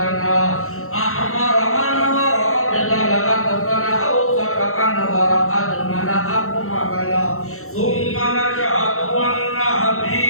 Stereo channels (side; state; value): right; late; 0.63 ms